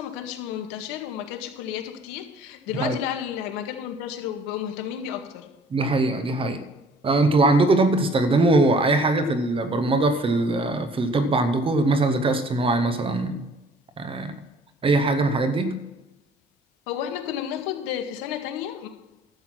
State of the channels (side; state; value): both; normal; correlation 0.54